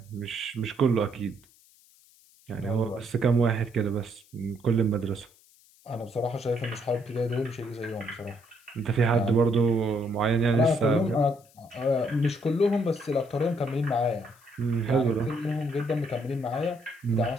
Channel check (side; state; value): left; noise; hiss, 29 dB below the sound